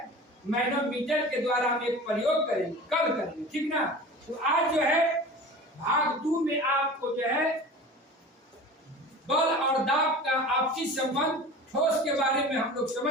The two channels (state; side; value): normal; both; correlation 0.37